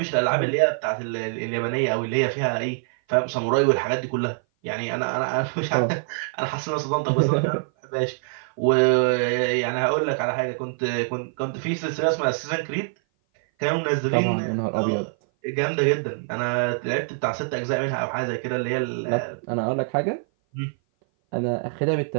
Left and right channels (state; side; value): silent; left; 57 dB below the other